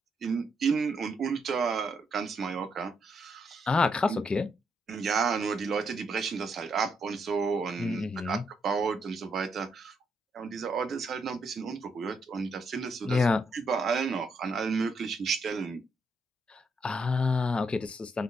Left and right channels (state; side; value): normal; both; correlation 0.77